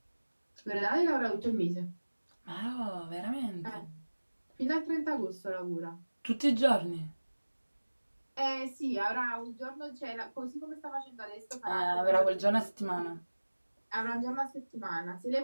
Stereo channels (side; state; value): both; inverted; correlation -1.00